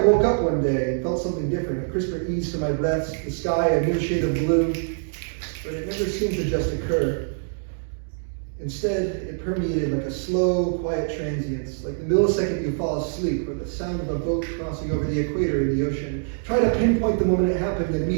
woke up one day and felt something different, a crisper ease to my breaths, the sky a new shade of blue, but it never seemed to just occur. Instead, it permeated like a slow, quiet transience, like the millisecond you fall asleep or the sound of a boat crossing over the equator in the ocean. Try to pinpoint the moment it happened, and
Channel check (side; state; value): left; silent; digital silence